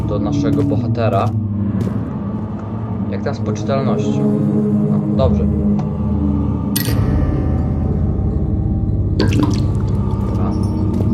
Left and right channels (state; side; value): identical; both; correlation 1.00